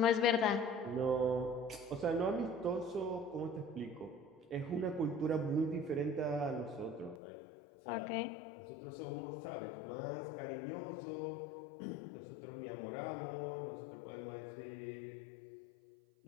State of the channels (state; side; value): drops out; right; at 7.2 s